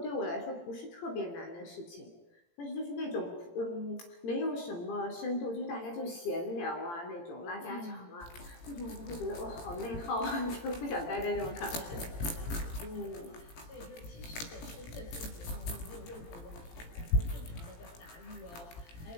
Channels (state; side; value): late; right; 18 ms